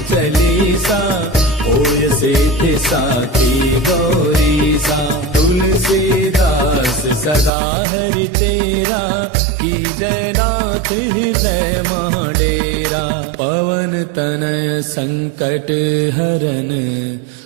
चालीसा होय सिद्धि साखी गौरीसा तुलसीदास सदा हरि तेरा की जय गात हृदय महाडेरा पवन तनय संकट हरन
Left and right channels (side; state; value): left; drops out; at 7.5 s